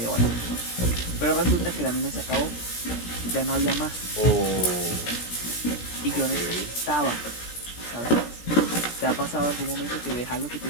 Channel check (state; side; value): late; right; 17 ms